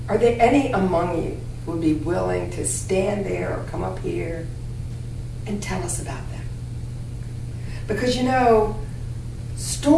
are there any among you who would be willing to stand there or come up here and tell us about them? Because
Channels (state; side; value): identical; both; correlation 1.00